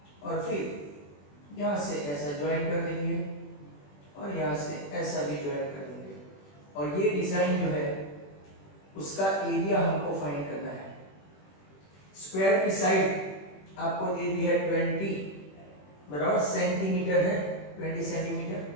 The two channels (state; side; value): late; right; 21 ms